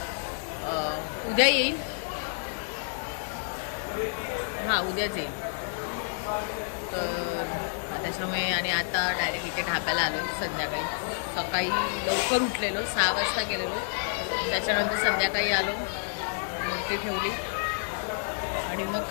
उद्या येईल. हा उद्याच येईल. तर त्याच्यामुळे आणि आता डायरेक्ट इथे ढाब्याला आलो संध्याकाळी. सकाळी लवकर उठलेलो 6 वाजता गेलेलो. त्याच्यानंतर संध्याकाळी आलो मूर्ती ठेवली आणि मग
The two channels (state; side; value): silent; right; digital silence